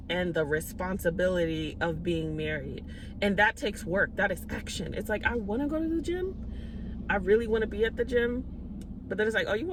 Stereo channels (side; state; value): both; identical; correlation 1.00